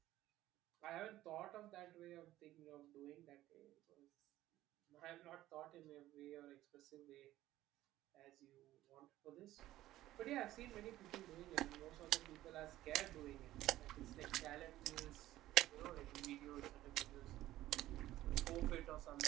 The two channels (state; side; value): quieter; left; 15.0 dB